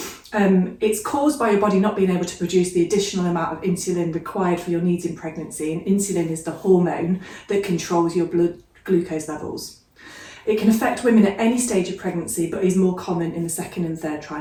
It's caused by your body not being able to produce the additional amount of insulin required for your needs in pregnancy, and insulin is the hormone that controls your blood glucose levels. It can affect women at any stage of pregnancy, but is more common in the second and third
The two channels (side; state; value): both; identical; correlation 1.00